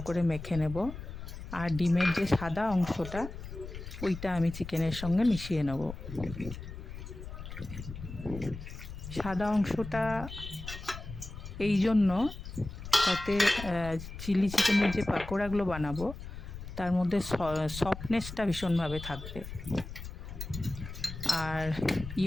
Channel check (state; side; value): noise; left; rumble, 10 dB below the sound